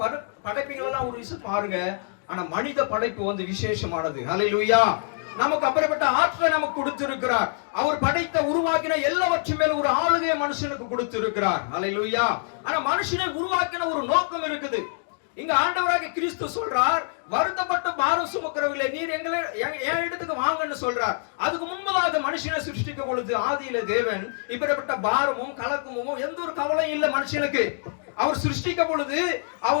படைப்புகள் எல்லாம் ஒரு விஷயம் பாருங்க, ஆனா மனித படைப்பு வந்து விசேஷமானது. அல்லேலூயா. நமக்கு அப்படிப்பட்ட ஆற்றலை நமக்கு கொடுத்திருக்கிறார். அவர் படைத்த உருவாக்கின எல்லாவற்றும் மேல ஒரு ஆளுகையை மனுஷனுக்கு கொடுத்திருக்கிறார். அல்லேலூயா. ஆனா மனுஷனை உருவாக்கின ஒரு நோக்கம் இருக்குது. இங்க ஆண்டவராகிய கிறிஸ்து சொல்றார், வருத்தப்பட்ட பாரம் சுமக்கிறவர்களே நீர் எங்களை என் இடத்துக்கு வாங்கன்னு சொல்றார். அதுக்கு முன்பதாக மனுஷனை சிருஷ்டிக்க பொழுது ஆதியில தேவன் இப்படிப்பட்ட பாரமும் கலக்கமும் எந்த ஒரு கவலையும் இல்லை மனுஷனுக்கு. அவர் சிருஷ்டிக்க பொழுது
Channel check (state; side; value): silent; right; 61 dB below the other